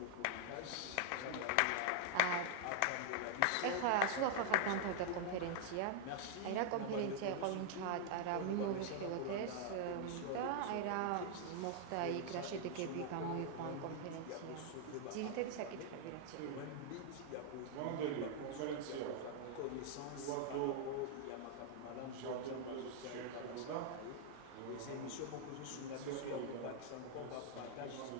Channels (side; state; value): both; different; correlation 0.00